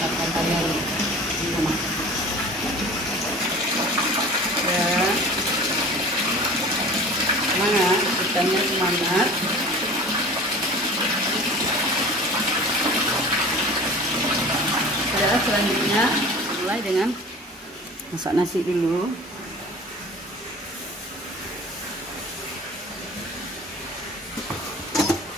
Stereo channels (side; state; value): both; normal; correlation 0.41